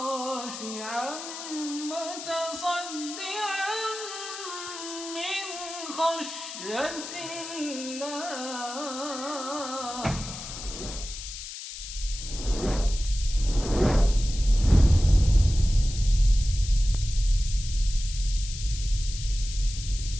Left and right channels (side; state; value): left; noise; hiss, 10 dB below the sound